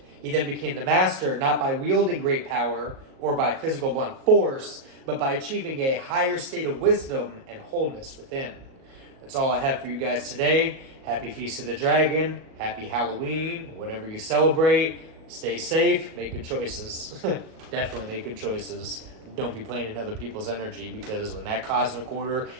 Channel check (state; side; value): late; left; 37 ms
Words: He then became the master, not by wielding great power or by physical blunt force, but by achieving a higher state of wisdom and wholeness within. That's all I have for you guys today. Happy Feast of the Dragon, happy Halloween, whatever you celebrate. Stay safe, make good choices. Definitely make good choices. Don't be playing in other people's energy, because when that cosmic order